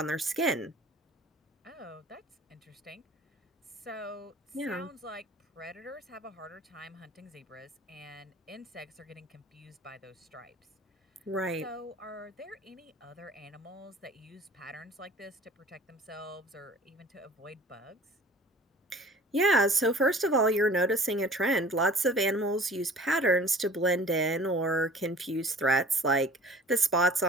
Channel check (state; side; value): normal; both; correlation 0.46